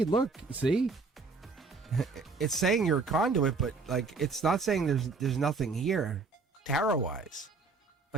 Look, see? It's saying you're a conduit, but like it's not saying there's nothing here tarot-wise.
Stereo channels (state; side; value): quieter; left; 4.2 dB